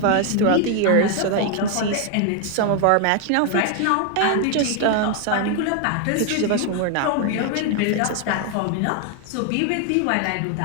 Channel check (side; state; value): both; different; correlation 0.01